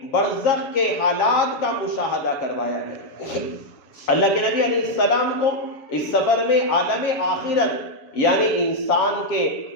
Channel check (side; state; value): right; late; 7.4 ms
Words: برزخ کے حالات کا مشاہدہ کروایا گیا۔ اللہ کے نبی علیہ السلام کو اس سفر میں عالم آخرت یعنی انسان کے